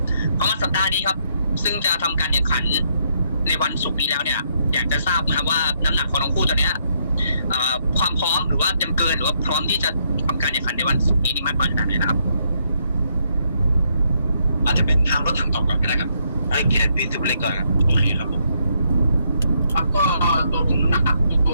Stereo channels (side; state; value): both; inverted; correlation -0.74